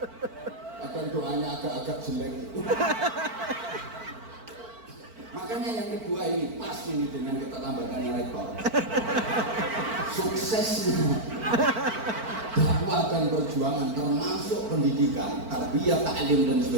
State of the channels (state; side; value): late; left; 4.5 ms